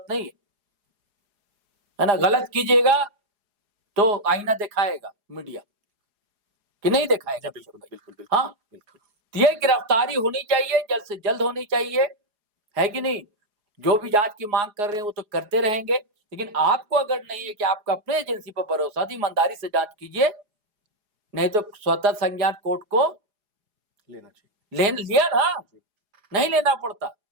नहीं है ना। गलत कीजिएगा तो आईना दिखाएगा मीडिया कि नहीं दिखाएगा? बिल्कुल बिल्कुल बिल्कुल। हाँ बिल्कुल। ये गिरफ्तारी होनी चाहिए, जल्द से जल्द होनी चाहिए, है कि नहीं? जो भी जांच की मांग कर रहे हैं वो तो करते रहेंगे, लेकिन आपको अगर नहीं है कि आपका अपने एजेंसी पर भरोसा, तो ईमानदारी से जांच कीजिए, नहीं तो स्वतः संज्ञान कोर्ट को लेना चाहिए। लिया ना, नहीं लेना पड़ता।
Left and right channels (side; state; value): left; late; 4.9 ms